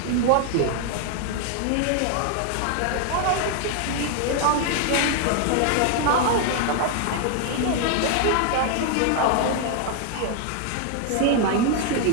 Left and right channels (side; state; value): both; different; correlation 0.00